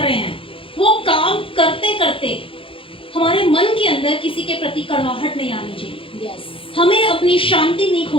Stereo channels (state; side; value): late; right; 0.26 ms